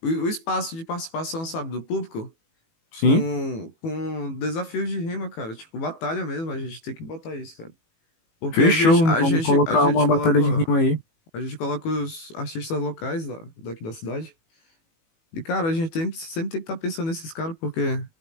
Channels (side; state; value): right; late; 18 ms